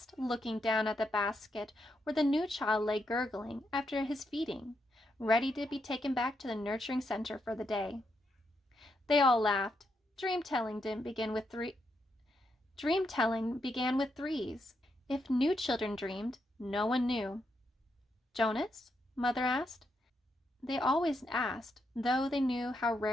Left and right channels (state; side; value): normal; both; correlation 0.81